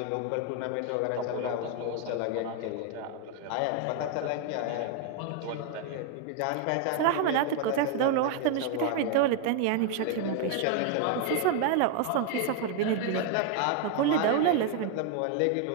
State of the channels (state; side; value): different; both; correlation 0.01